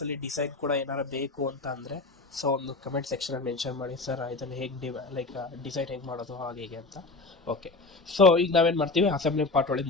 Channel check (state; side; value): quieter; right; 3.5 dB